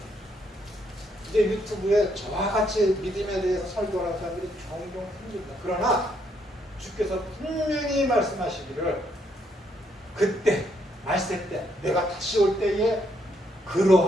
이제 유튜브에 저와 같이 믿음에 대해서 설교하는 사람들이 종종 생깁니다. 그러나 주께서 분명히 말씀하시기를 그때 말세 때 내가 다시 올 때에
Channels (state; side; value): normal; both; correlation 0.73